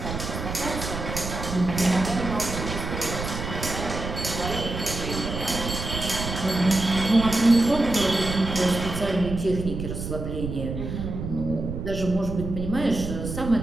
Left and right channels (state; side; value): noise; right; rumble, 6 dB below the sound